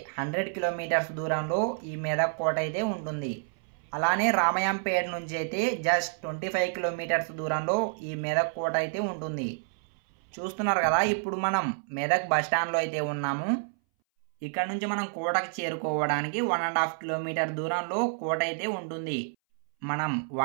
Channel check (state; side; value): silent; left; 59 dB below the other